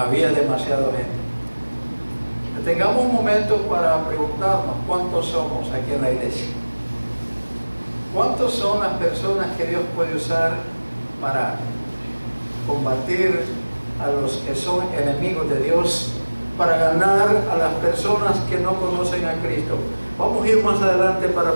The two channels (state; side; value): inverted; both; correlation -1.00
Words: demasiada gente. Tengamos un momento para preguntarnos cuántos somos aquí en la iglesia. ¿Cuántos son las personas que Dios puede usar para combatir a los que son enemigos de Dios, para ganar a las personas que no conocen a Cristo? Vamos a ir más adelante para